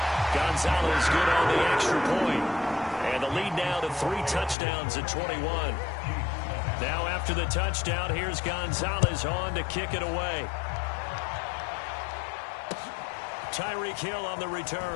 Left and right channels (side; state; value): right; drops out; at 4.5 s